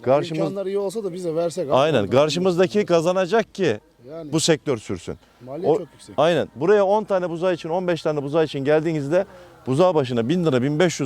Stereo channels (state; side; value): identical; both; correlation 1.00